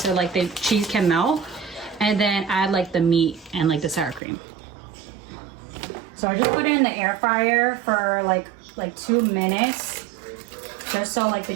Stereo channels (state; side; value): drops out; left; at 4.2 s